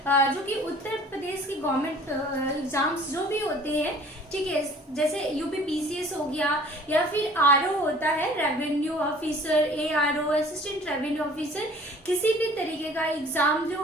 जो कि उत्तर प्रदेश की गवर्नमेंट एग्जाम्स जो भी होते हैं, ठीक है, जैसे यूपी पीसीएस हो गया या फिर आरओ होता है, revenue officer, ARO, assistant revenue officer, किसी भी तरीके का एग्जाम जो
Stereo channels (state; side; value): normal; both; correlation 0.50